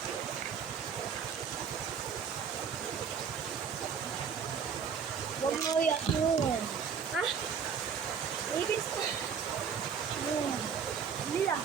Huwag mo yun. Ha? Ibig sa... Hindi lang.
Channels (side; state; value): left; quieter; 6.9 dB